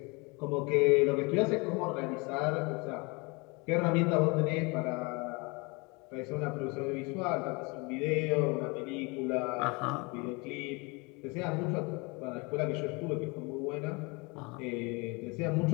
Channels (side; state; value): right; quieter; 28.2 dB